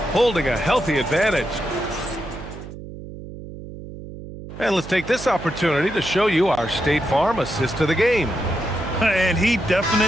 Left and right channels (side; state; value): right; noise; hum, 13 dB below the sound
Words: holding a healthy advantage. And let's take this opportunity to show you our State Farm assist to the game. And he